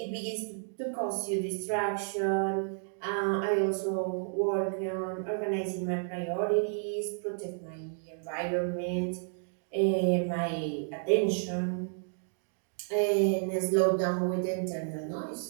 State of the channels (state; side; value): silent; left; digital silence